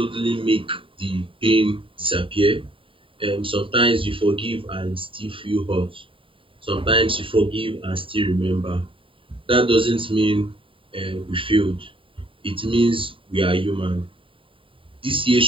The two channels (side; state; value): left; late; 0.25 ms